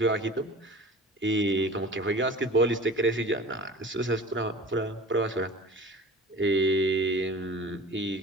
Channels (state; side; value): normal; both; correlation 0.40